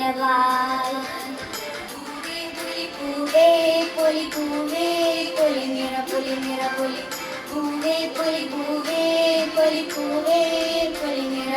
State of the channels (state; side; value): identical; both; correlation 1.00